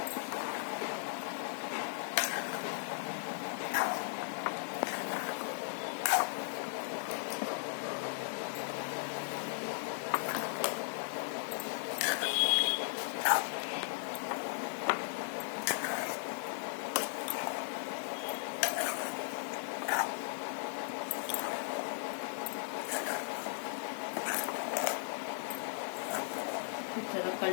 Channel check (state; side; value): silent; right; digital silence